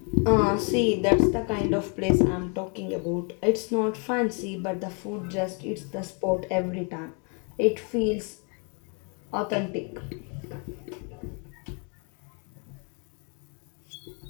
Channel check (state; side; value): quieter; right; 35.6 dB